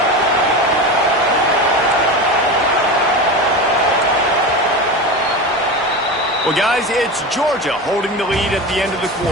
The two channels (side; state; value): both; normal; correlation 0.25